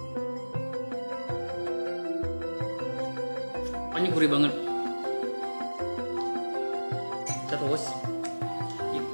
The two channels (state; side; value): inverted; both; correlation -1.00